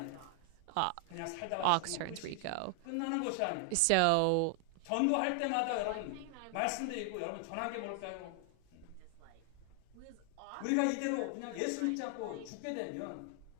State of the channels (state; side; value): different; both; correlation 0.00